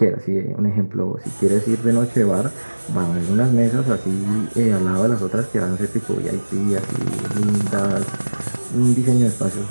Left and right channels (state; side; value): inverted; both; correlation -1.00